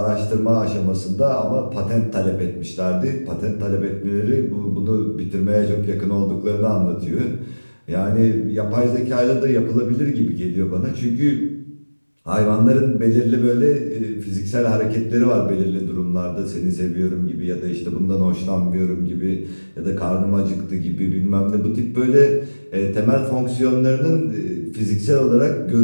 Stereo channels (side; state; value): both; inverted; correlation -1.00